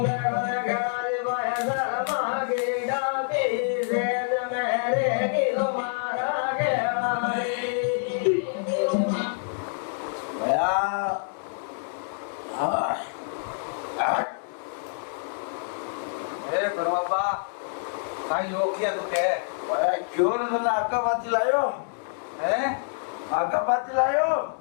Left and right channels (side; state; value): right; silent; digital silence